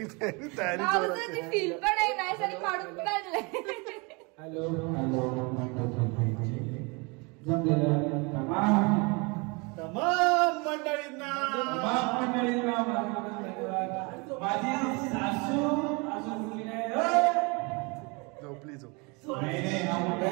तयारी फील पण आहे नाही सगळी काढून काढलंय. हॅलो तमाम मंडळींना माझी सासू अजून मुली नाही. झोपली झोप.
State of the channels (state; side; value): quieter; left; 29.4 dB